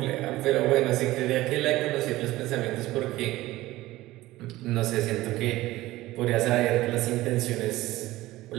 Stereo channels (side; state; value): left; quieter; 17.4 dB